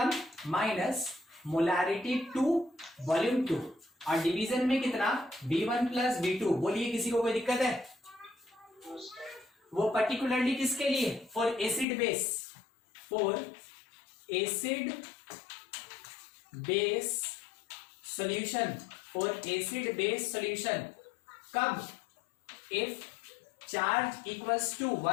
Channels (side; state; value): right; drops out; at 11.9 s